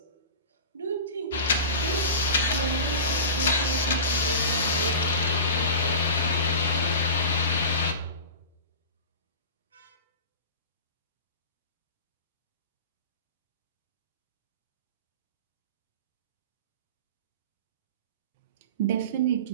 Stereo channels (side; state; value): both; inverted; correlation -0.32